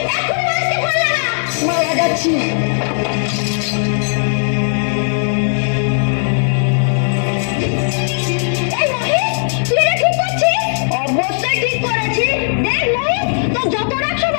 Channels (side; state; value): right; silent; digital silence